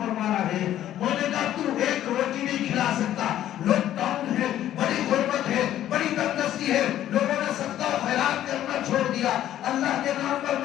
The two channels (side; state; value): right; quieter; 12.2 dB